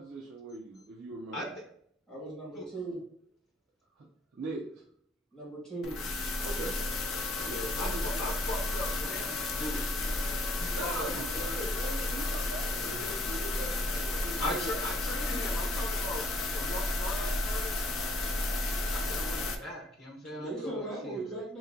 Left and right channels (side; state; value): both; normal; correlation 0.64